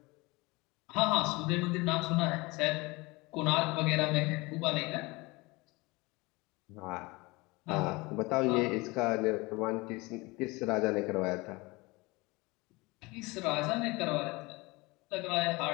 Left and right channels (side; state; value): right; quieter; 23.9 dB